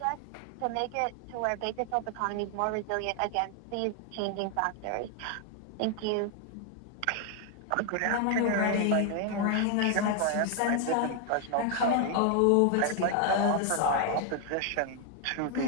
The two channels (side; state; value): both; different; correlation 0.00